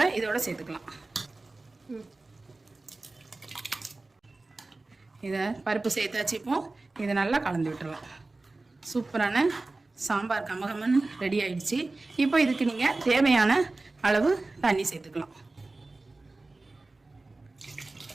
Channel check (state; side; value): quieter; left; 3.2 dB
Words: இதோட சேர்த்துக்கலாம். இதை பருப்பு சேர்த்தாச்சு. இப்போ இதை நல்லா கலந்து விட்டுடலாம். சூப்பரான சாம்பார் கமகமன்னு ரெடி ஆயிடுச்சு. இப்போ இதுக்கு நீங்கள் தேவையான அளவு தண்ணி சேர்த்துக்கலாம்.